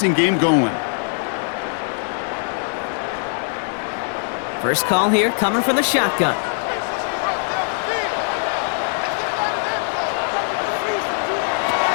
game going. First call here coming from the shotgun.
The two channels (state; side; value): silent; right; 65 dB below the other